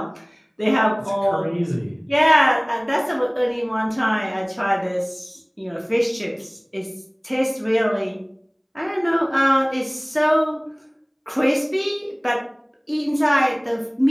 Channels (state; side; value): identical; both; correlation 1.00